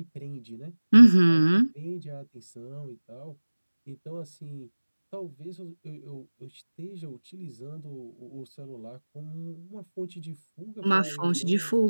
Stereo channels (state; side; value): inverted; both; correlation -1.00